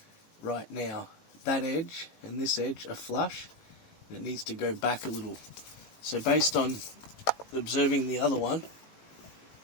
right now. That edge and this edge are flush, and it needs to go back a little. So based on observing the other one,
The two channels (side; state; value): right; late; 18 ms